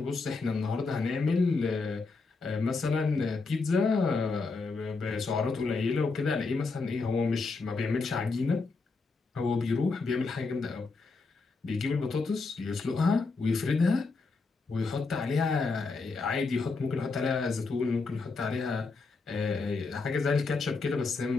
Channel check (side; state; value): right; quieter; 4.1 dB